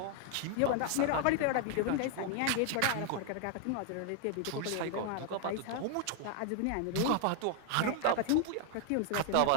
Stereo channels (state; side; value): different; both; correlation 0.00